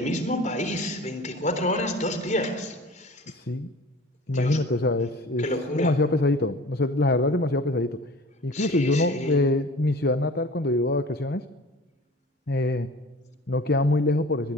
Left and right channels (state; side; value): normal; both; correlation 0.42